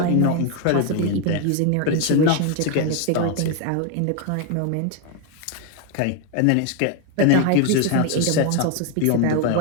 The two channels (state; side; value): different; both; correlation 0.01